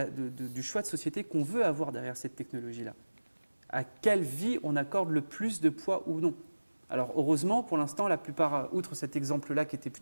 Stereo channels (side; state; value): both; inverted; correlation -1.00